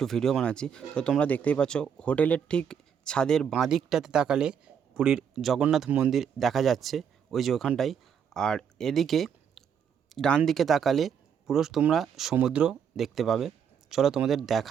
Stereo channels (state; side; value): quieter; left; 7.7 dB